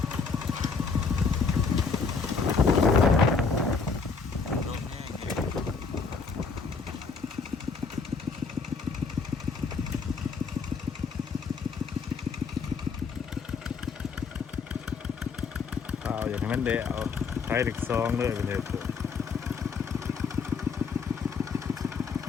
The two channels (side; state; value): right; quieter; 5.0 dB